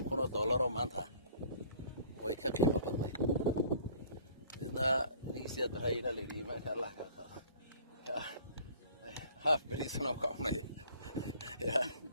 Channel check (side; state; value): both; inverted; correlation -0.52